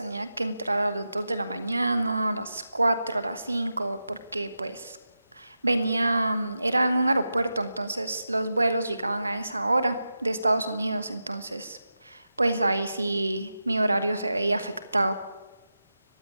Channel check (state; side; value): inverted; both; correlation -0.90